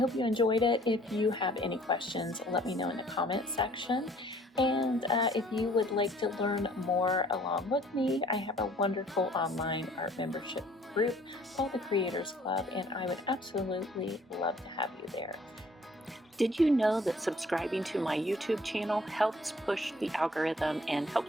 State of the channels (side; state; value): both; normal; correlation 0.57